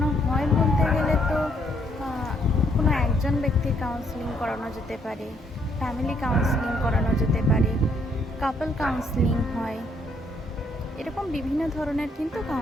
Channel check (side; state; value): both; normal; correlation 0.70